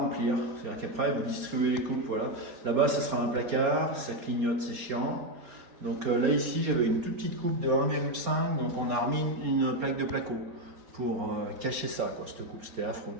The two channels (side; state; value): left; late; 4.3 ms